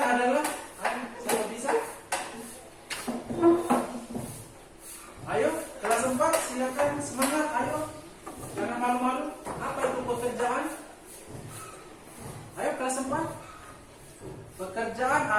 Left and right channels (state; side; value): identical; both; correlation 1.00